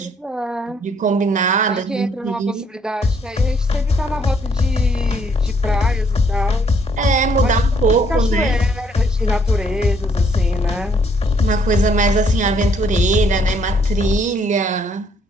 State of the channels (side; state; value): both; normal; correlation 0.67